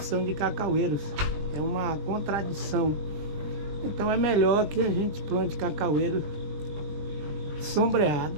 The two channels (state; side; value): late; left; 21 ms